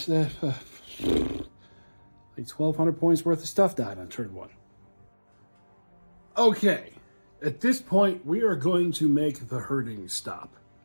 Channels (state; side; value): inverted; both; correlation -1.00